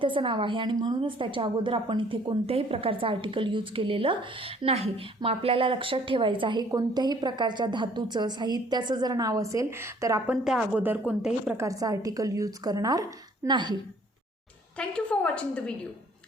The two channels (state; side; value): normal; both; correlation 0.58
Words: नाव आहे आणि म्हणूनच त्याच्या अगोदर आपण इथे कोणत्याही प्रकारचं आर्टिकल यूज केलेलं नाही. मग आपल्याला लक्षात ठेवायचं आहे, कोणत्याही प्रकारच्या धातूचं, साहित्याचं जर नाव असेल तर आपण त्या अगोदर कोणत्याही प्रकारचं आर्टिकल यूज करणार नाही. Thank you for watching the video.